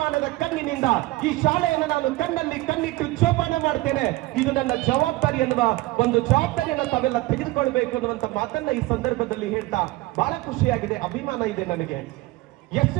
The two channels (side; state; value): left; quieter; 19.2 dB